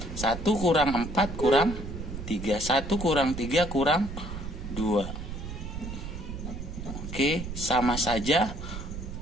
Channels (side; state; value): right; noise; rumble, 8 dB below the sound